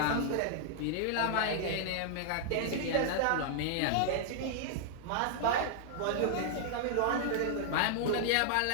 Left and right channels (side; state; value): both; different; correlation -0.01